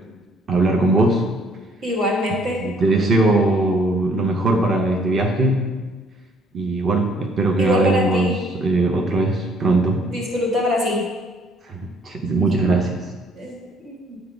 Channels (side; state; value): both; normal; correlation 0.62